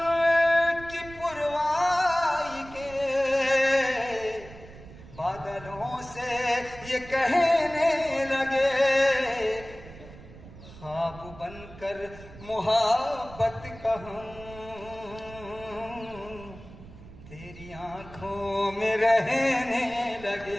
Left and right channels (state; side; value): noise; right; rumble, 17 dB below the sound